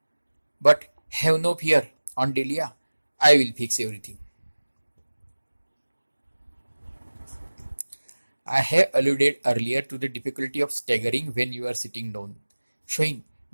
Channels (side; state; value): both; inverted; correlation -1.00